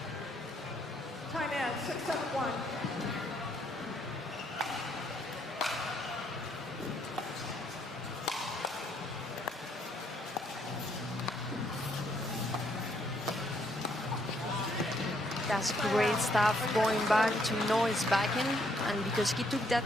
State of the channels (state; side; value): normal; both; correlation 0.71